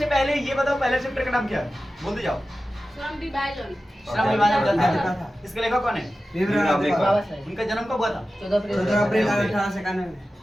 पहले ये बताओ पहला चैप्टर का नाम क्या है, बोलते जाओ। श्रम विभाजन। श्रम विभाजन। इसका लेखक कौन है? उनका जन्म कब हुआ था? 14 अप्रैल 1891 में।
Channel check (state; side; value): normal; both; correlation 0.94